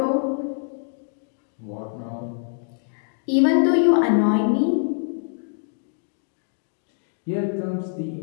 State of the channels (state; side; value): silent; right; digital silence